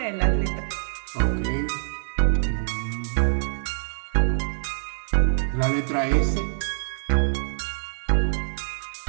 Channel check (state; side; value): silent; left; digital silence